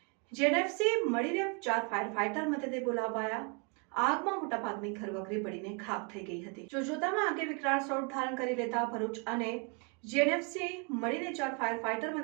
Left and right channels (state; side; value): quieter; left; 35.4 dB